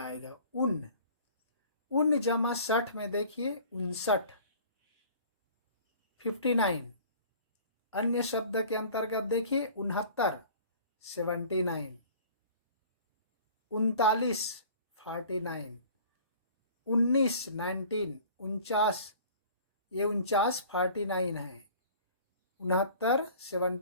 उन जमा 60 में देखिए 59, 59। अन्य शब्द के अंतर्गत देखिए 69, 79, 39, 49, 19, 19, 49, ये 49 49 है, 69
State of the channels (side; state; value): both; inverted; correlation -0.48